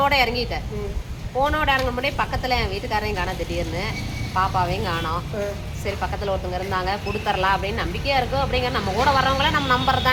இறங்கிட்டேன். ஃபோனோட இறங்க முடியும் பக்கத்தில் என் வீட்டுக்காரையும் காணோம், திடீர்னு பாப்பாவையும் காணோம். சரி பக்கத்தில் ஒருத்தவங்க இருந்தாங்க, கொடுத்துடலாம் அப்படின்னு நம்பிக்கையாக இருக்கும். அப்படிங்கிற நம்ம கூட வர்றவங்கள நம்ம நம்பர்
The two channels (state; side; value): identical; both; correlation 1.00